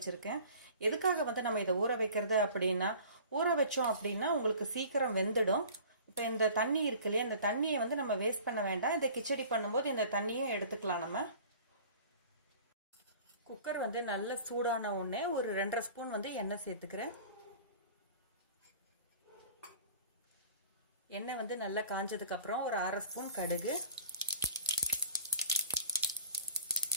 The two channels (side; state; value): both; inverted; correlation -0.45